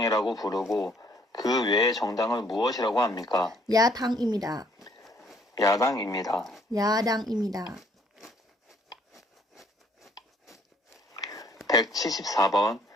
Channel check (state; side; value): normal; both; correlation 0.63